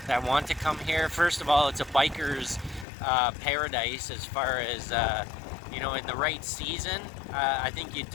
that want to come here. First of all, it's a biker's paradise as far as, you know, in the right season. I think you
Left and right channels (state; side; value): drops out; right; at 2.9 s